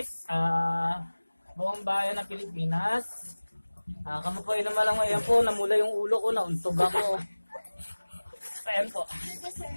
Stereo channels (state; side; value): inverted; both; correlation -1.00